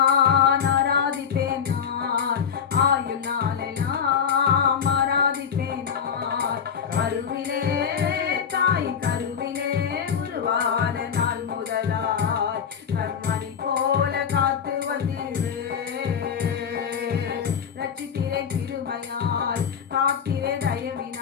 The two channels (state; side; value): quieter; right; 7.3 dB